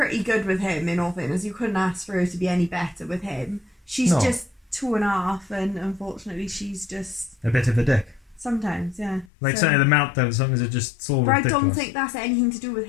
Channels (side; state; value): right; drops out; at 9.3 s